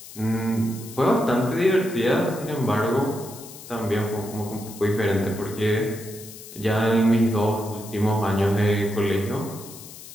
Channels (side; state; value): left; noise; hiss, 16 dB below the sound